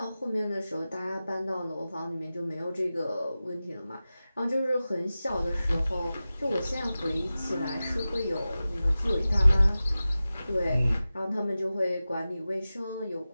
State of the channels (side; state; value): both; inverted; correlation -0.95